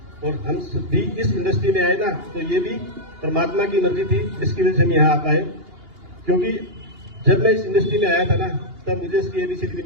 और हम भी इस इंडस्ट्री में आए ना तो ये भी परमात्मा की मर्जी थी, इसकी वजह से हम यहाँ आ पाए। क्योंकि जब मैं इस इंडस्ट्री में आया था ना तब मुझे इसकी ABCD भी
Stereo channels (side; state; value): left; late; 2.8 ms